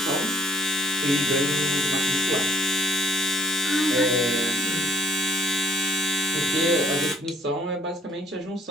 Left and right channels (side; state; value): both; normal; correlation 0.62